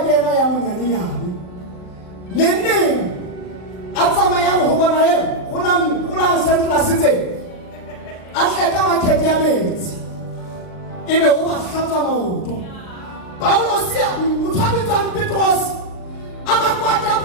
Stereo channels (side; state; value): right; late; 39 ms